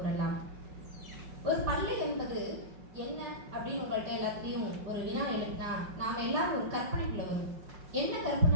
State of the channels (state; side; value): late; left; 5.5 ms